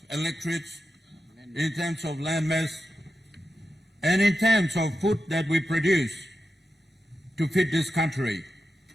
electorates, in terms of land mass, and in terms of food that we produce to feed this country.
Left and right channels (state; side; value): normal; both; correlation 0.90